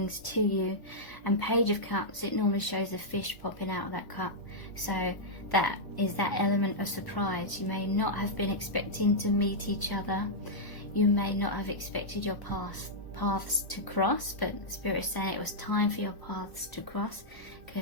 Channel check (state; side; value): late; right; 1.0 ms